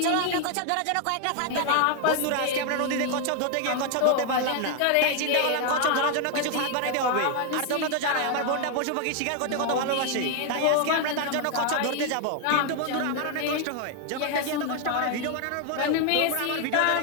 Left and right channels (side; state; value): both; different; correlation 0.01